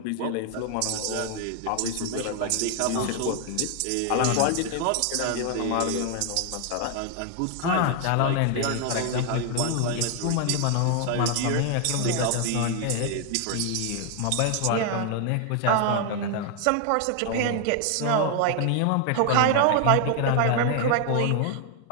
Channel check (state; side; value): different; both; correlation 0.00